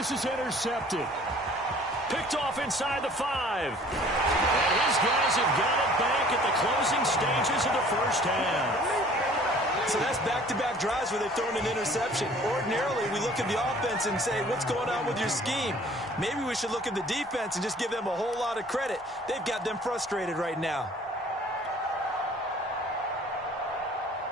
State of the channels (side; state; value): both; normal; correlation 0.52